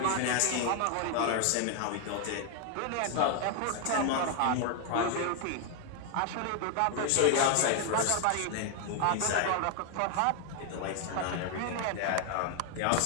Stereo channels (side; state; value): both; different; correlation 0.00